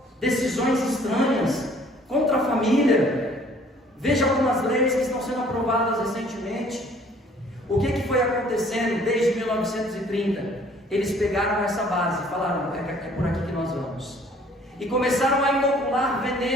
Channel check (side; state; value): both; normal; correlation 0.57